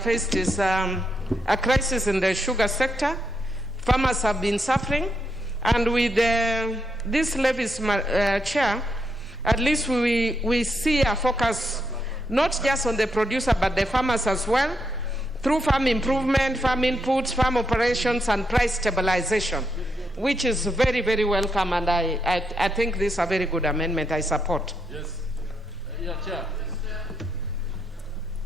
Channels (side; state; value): both; normal; correlation 0.80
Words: is a crisis in the sugar sector. Farmers have been suffering, and with these levies, Chair, at least we see a focus not just on the producer but the farmers as well through farm improvement, farm inputs, farm operations, and price stabilization, which is very, very welcome, and I think this is a very good amendment. I support. Yes. Yeah, Chair.